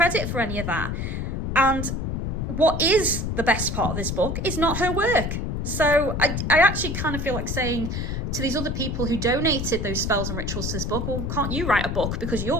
for any of that. And what is the best part of this book is not her work. So I actually kind of feel like saying to these other people who donated those spells and rituals to this book, well, can't you write a book, because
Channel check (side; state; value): left; noise; rumble, 2 dB below the sound